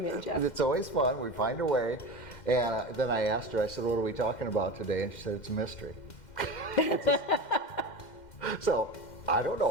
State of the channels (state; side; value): late; right; 2.1 ms